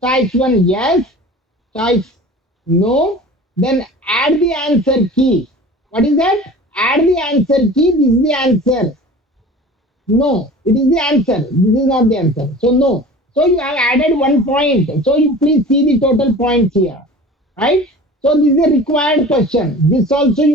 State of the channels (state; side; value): normal; both; correlation 0.40